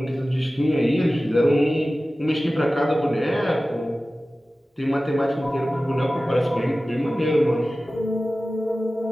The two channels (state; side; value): normal; both; correlation 0.96